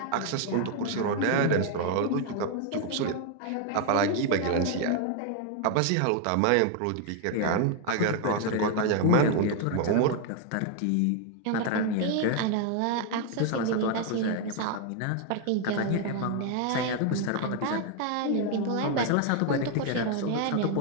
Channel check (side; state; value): both; different; correlation 0.00